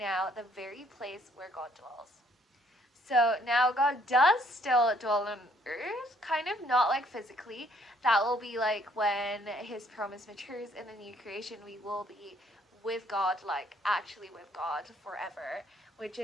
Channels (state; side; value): normal; both; correlation 0.65